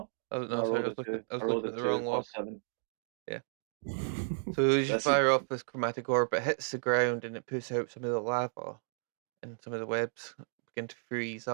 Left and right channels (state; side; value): silent; left; digital silence